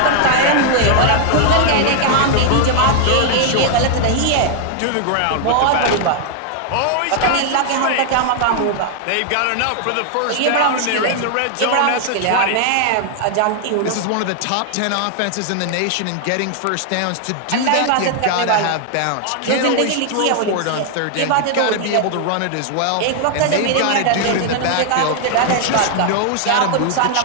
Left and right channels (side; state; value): both; different; correlation 0.00